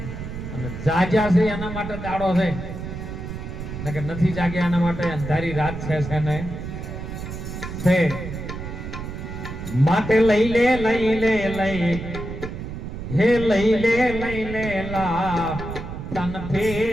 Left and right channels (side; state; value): right; noise; rumble, 8 dB below the sound